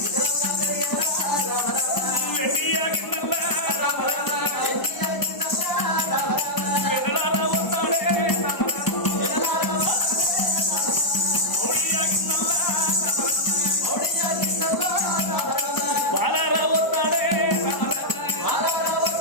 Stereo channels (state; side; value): late; right; 1.0 ms